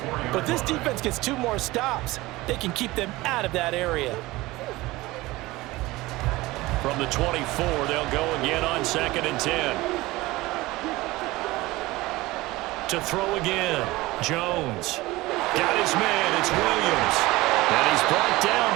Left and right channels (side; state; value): left; quieter; 19.8 dB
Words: But if this defense gets 2 more stops, they can keep them out of that area. From the 24, they'll go again on 2nd and 10. To throw again, Jones. Got his man, it's Williams. And he's brought